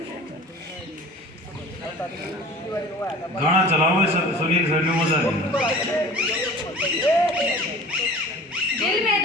गाना चलाओ सुनील सर ने मजा लिया। दिल में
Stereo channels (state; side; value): normal; both; correlation 0.42